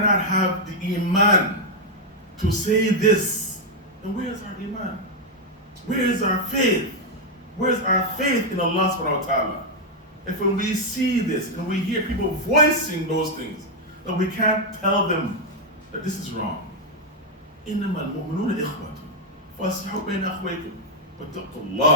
have the iman to say this, then where is our iman? Where is our faith? Where is our faith in Allah subhanahu wa ta'ala? If when we see this and we hear people voicing those things, that we can't tell them that this is wrong. إِنَّمَا الْمُؤْمِنُونَ إِخْوَةٌ فَأَصْلِحُوا بَيْنَ أَخْوَيْكُمْ وَاتَّقُوا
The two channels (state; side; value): normal; both; correlation -0.01